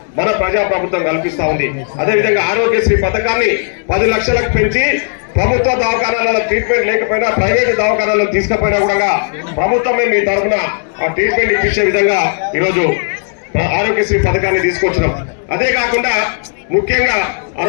మన ప్రజా ప్రభుత్వం కల్పిస్తా ఉంది. అదేవిధంగా ఆరోగ్యశ్రీ పథకాన్ని 10 లక్షలకు పెంచి ప్రభుత్వ దవాఖానాలలో ట్రీట్మెంట్ లేకపోయినా ప్రైవేట్ దవాఖానాలను తీసుకుపోయినా కూడా ప్రభుత్వమే మీ తరఫున ఆ ట్రీట్మెంట్ ఇప్పించే విధంగా ఈరోజు ఆరోగ్యశ్రీ పథకాన్ని తీసుకొచ్చినాం. అదే కాకుండా ముఖ్యంగా ఆ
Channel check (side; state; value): right; silent; 65 dB below the other